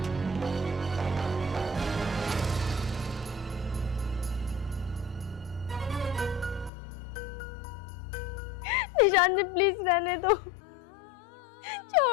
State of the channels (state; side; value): drops out; right; at 6.7 s